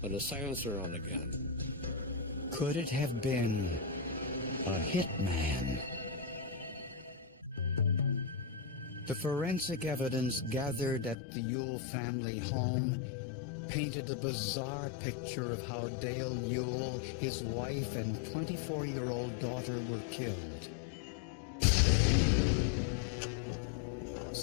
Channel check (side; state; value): right; drops out; at 11.2 s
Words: with a silencer on the gun? Could it have been a hitman. The forensic evidence gathered at the Ewell family home painted a bizarre picture of how Dale Ewell, his wife, and 24-year-old daughter were killed.